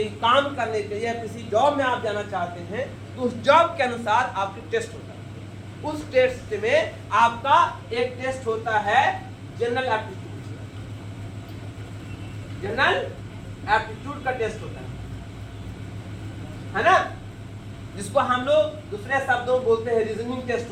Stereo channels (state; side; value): identical; both; correlation 1.00